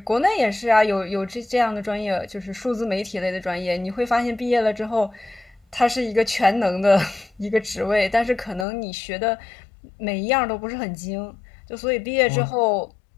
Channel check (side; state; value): right; drops out; at 8.7 s